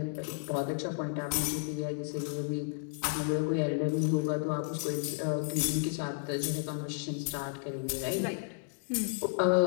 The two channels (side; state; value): right; silent; digital silence